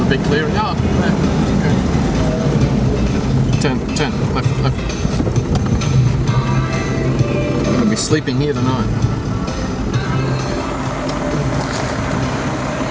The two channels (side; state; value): both; identical; correlation 1.00